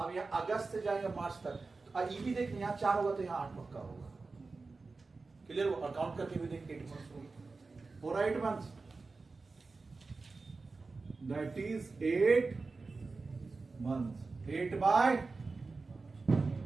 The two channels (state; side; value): quieter; left; 4.0 dB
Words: यहाँ अगस्त से जाएंगे मार्च तक, ये भी देख यहाँ 4 होगा तो यहाँ 8 पक्का होगा। क्लियर हो? और काउंट करके भी देख 8 मंथ्स होगा, पूरा 8 मंथ्स, दैट इज 8 मंथ्स।